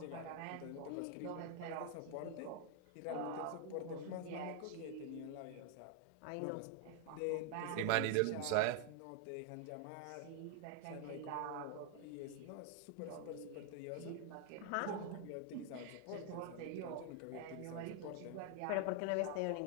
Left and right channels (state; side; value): different; both; correlation 0.01